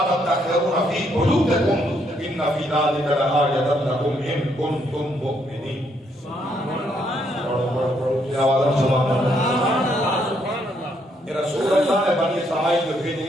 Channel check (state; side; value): normal; both; correlation 0.73